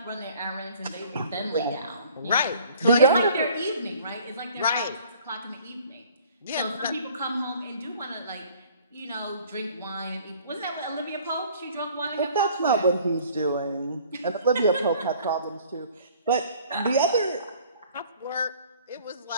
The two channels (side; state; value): both; inverted; correlation -0.53